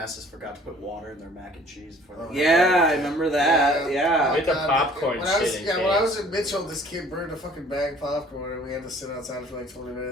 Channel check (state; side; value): normal; both; correlation 0.53